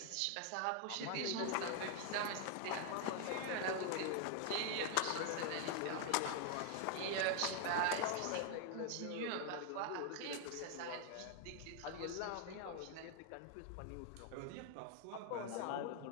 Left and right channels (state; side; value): different; both; correlation 0.00